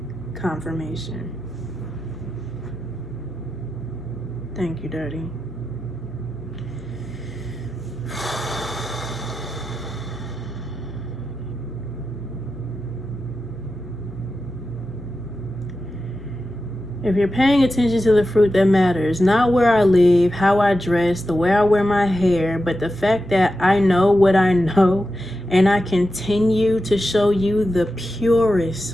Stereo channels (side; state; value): left; noise; hum, 18 dB below the sound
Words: Confirmation. Thank you, Daddy. If you're paying attention to the fruit that matters, not where I live, how I dress, the way I wear my hair, but the fact that I know what I know and I continue to show you the